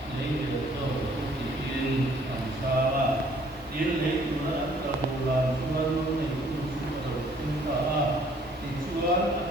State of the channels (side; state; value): both; normal; correlation 0.60